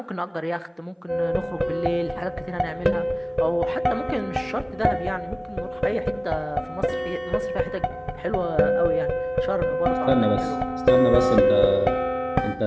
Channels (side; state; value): both; identical; correlation 1.00